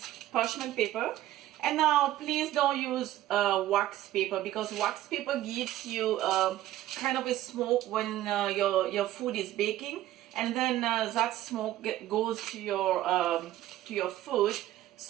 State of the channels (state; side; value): quieter; left; 14.2 dB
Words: parchment paper. And now please don't use wax paper, because wax paper gives you kind of a smoke when your food is baking, and then that smoke goes to your food.